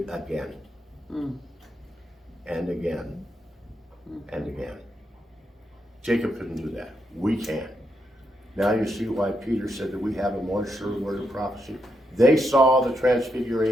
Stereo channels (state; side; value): normal; both; correlation 0.81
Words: again. And again. And again. Jacob couldn't do that. We can. Now you see why Peter said that we have a more sure word of prophecy. They saw the